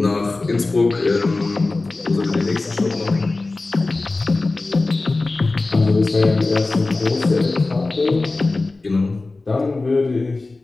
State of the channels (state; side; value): quieter; right; 3.4 dB